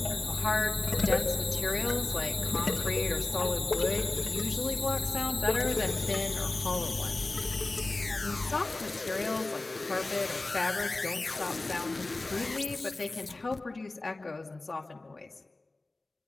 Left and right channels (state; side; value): quieter; right; 3.1 dB